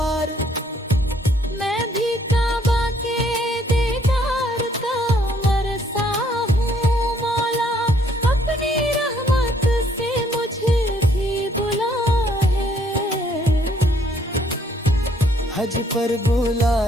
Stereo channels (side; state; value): both; normal; correlation 0.66